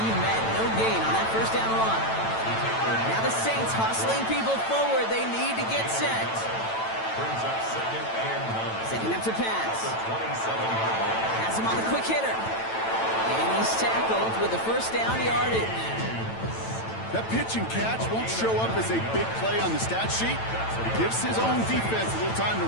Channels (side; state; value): right; late; 9.0 ms